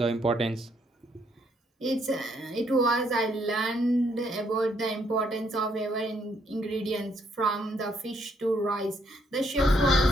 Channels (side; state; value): both; normal; correlation 0.72